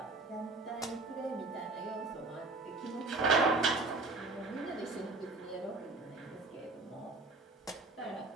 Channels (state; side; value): quieter; left; 3.5 dB